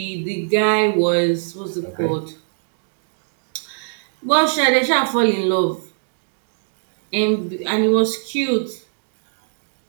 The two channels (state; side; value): silent; left; digital silence